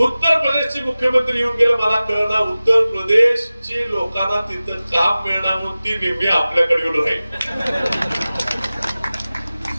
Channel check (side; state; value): both; inverted; correlation -0.97